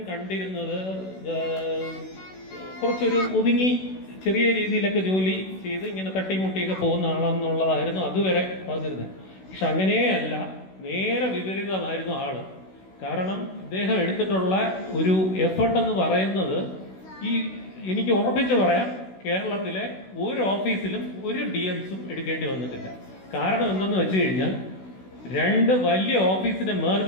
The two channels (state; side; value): late; right; 16 ms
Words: കണ്ടിരുന്നത് കുറച്ചൊരു ഒതുങ്ങി ചെറിയ രീതിയിലൊക്കെ ജോലി ചെയ്ത് ഇങ്ങനെ തട്ടിമുട്ടിയൊക്കെ പോകുന്ന ആളെന്നുള്ളതായിരുന്നു അതുവരെ പറഞ്ഞിരുന്നത്. പക്ഷെ അങ്ങനെയല്ല, നേരെ വിപരീതമായിരുന്നു ആള്. കാരണം ഇദ്ദേഹം എടുത്തിട്ടുള്ള ഒരു എഫർട്ട് എന്ന് പറയുന്നത്, എനിക്ക് ഉറപ്പിച്ച് പറയാം, കേരളത്തിലെ ഒരു ഓഫീസിലും ഒരു DMസും എടുക്കേണ്ടി വന്നിട്ടില്ല. കാരണം എന്തെന്ന് വെച്ച് കഴിഞ്ഞാൽ 2 വലിയ ഓഫീസിനെ മെർജ്